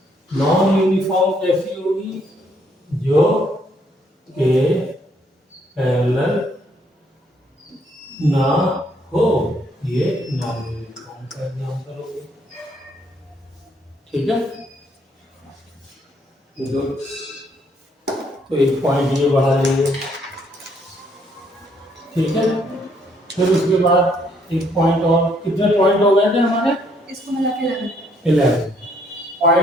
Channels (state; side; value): normal; both; correlation 0.68